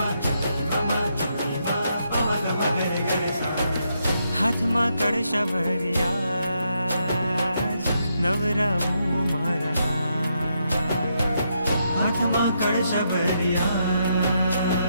गम नी मा प म गम गरे गरे सा। हाथ मा कड़शा भरिया नवराऊ मारा हाथ मा कड़शा भरिया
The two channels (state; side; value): inverted; both; correlation -0.79